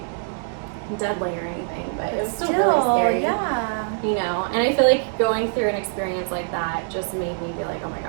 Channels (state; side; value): silent; left; 63 dB below the other